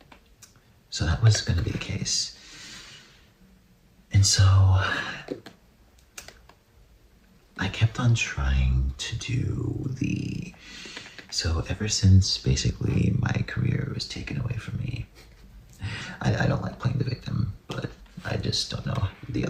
So that was gonna be the case. And so I kept on trying to do so ever since basically my career was taken away from me. I don't like playing the victim, but I just don't know the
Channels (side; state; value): both; identical; correlation 1.00